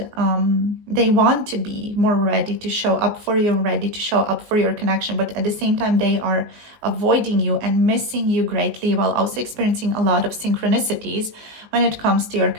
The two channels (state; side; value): late; left; 19 ms